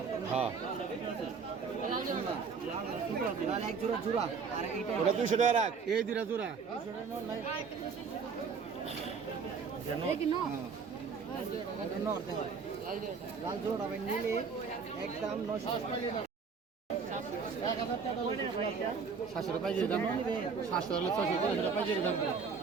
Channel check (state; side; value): quieter; left; 5.6 dB